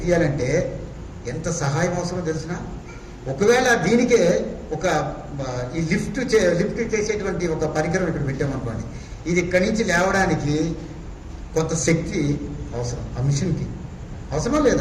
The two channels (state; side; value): identical; both; correlation 1.00